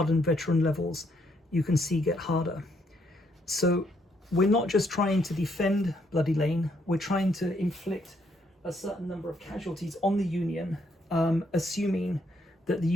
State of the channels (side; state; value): both; normal; correlation 0.72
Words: veteran levels you can see get harder. So we're not just trying to defend Bloody Lane, we're trying to inflict a certain number of casualties on the Union, assuming that the